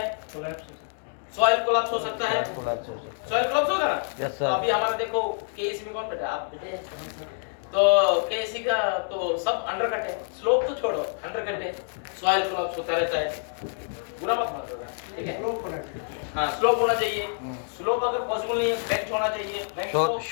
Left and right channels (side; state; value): right; silent; 60 dB below the other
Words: सॉइल कोलैप्स हो सकता है। सॉइल कोलैप्स होगा ना? यस तो सर। अभी हमारा देखो केएसी में कौन बैठा? आप बैठे हैं। तो केएसी का तो सब अंडरकट है, स्लोप तो छोड़ो, अंडरकट है, सॉइल कोलैप्स होता रहता है। बुरा मत मानो, ठीक है? स्लोप होना चाहिए। हाँ, स्लोप होना चाहिए। स्लोप अगर पॉसिबल नहीं है, बेंच होना चाहिए।